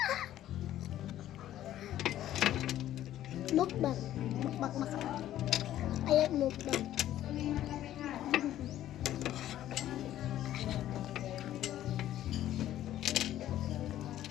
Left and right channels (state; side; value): quieter; right; 12.7 dB